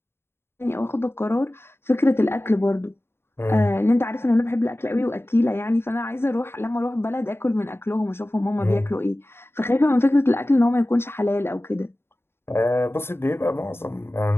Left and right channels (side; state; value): right; late; 0.11 ms